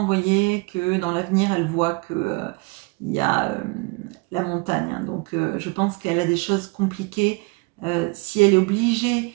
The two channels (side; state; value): left; quieter; 29.0 dB